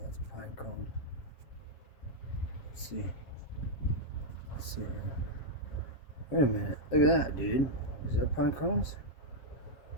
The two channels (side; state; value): right; late; 7.4 ms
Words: that's a pine cone. Let's see. Let's see here. Wait a minute. Look at that, dude. Is that pine cones?